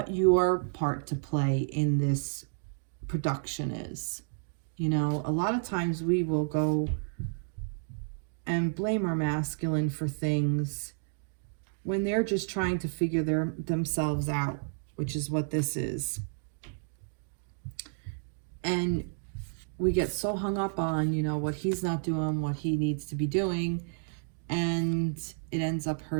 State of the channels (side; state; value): left; silent; digital silence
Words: your part to play in this production is. You know, a lot of times we will go and blame our masculine for things when they're just trying to figure themselves out, which is what this is. And we get so hung up on, you know, what he's not doing, what he needs to be doing, and it ends up